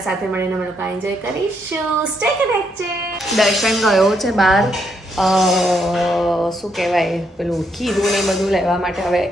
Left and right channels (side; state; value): both; normal; correlation 0.76